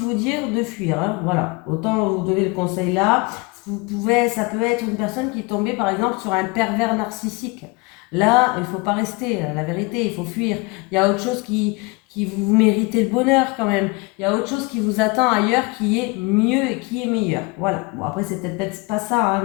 dire de fuir. Hein, voilà, autant vous donner le conseil là. Ça peut être une personne qui est tombée par exemple sur un pervers narcissique. Là, il ne faut pas rester, la vérité, il faut fuir. Il y a autre chose qui vous méritez le bonheur quand même. Il y a autre chose qui vous attend ailleurs qui est mieux et qui est meilleur. Voilà. Bon, après, c'est peut-être pas ça, hein,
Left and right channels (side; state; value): right; quieter; 26.9 dB